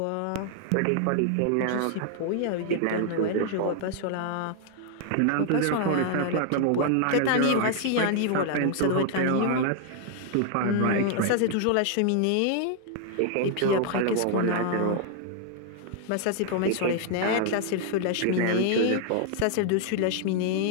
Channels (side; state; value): both; different; correlation 0.00